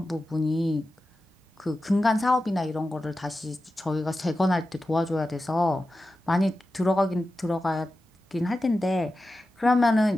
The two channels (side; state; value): both; normal; correlation 0.93